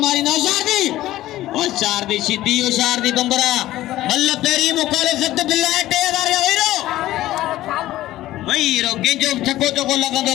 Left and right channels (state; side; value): quieter; right; 15.2 dB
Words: मारी ना होशियार दी सीधी होशियार दी बम्बरा मल्ल पेरी मुकाले सख्त बिल्ला 3000 वहीरो केंजो छक्को चोको